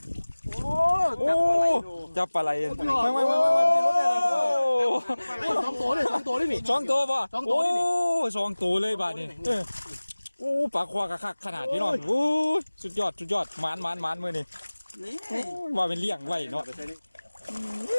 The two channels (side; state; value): both; inverted; correlation -1.00